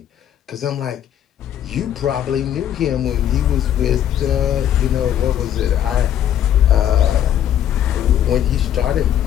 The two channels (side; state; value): right; quieter; 10.4 dB